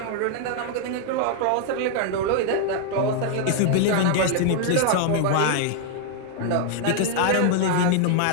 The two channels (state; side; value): different; both; correlation 0.00